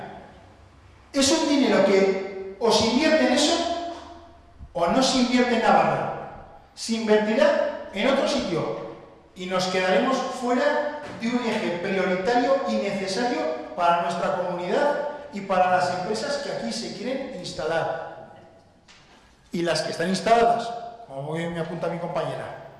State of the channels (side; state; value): both; identical; correlation 1.00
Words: Es un dinero que o se invierte en eso o no se invierte en Navarra. Se invertirá en otro sitio y nos quedaremos fuera de un eje prioritario y necesario para nuestra comunidad y para las empresas que aquí se quieren instalar. Y las que están instaladas, como bien me apunta mi compañera.